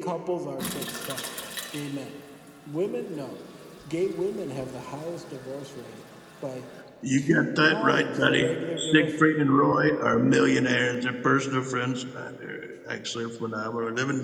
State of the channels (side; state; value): both; identical; correlation 1.00